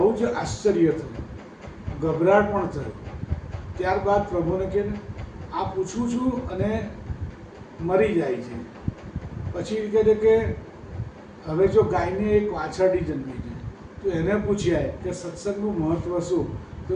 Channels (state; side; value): identical; both; correlation 1.00